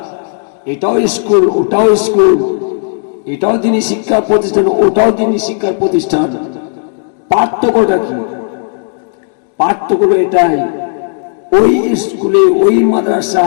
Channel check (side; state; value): right; silent; digital silence